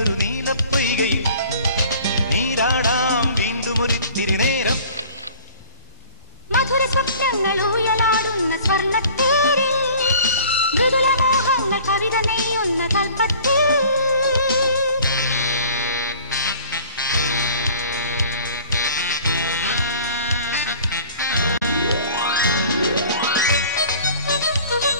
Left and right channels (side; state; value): both; inverted; correlation -0.47